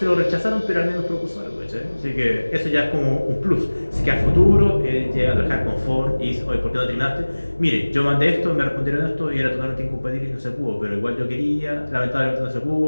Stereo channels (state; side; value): inverted; both; correlation -1.00